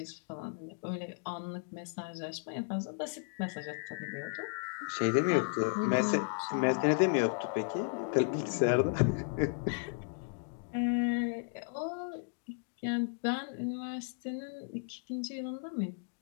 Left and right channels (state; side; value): silent; right; digital silence